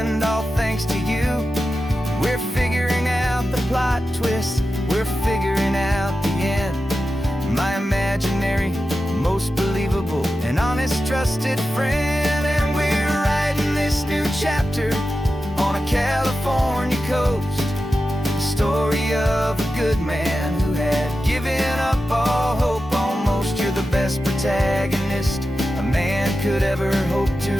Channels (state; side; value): normal; both; correlation 0.92